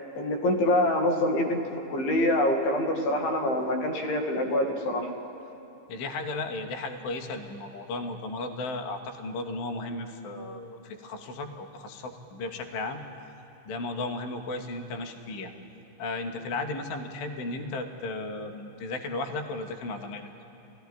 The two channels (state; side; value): late; right; 15 ms